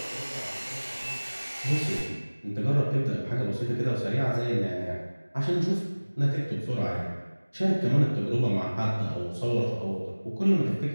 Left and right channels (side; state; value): both; inverted; correlation -1.00